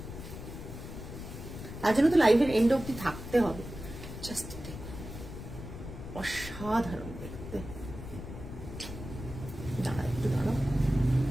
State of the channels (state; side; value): noise; left; rumble, 10 dB below the sound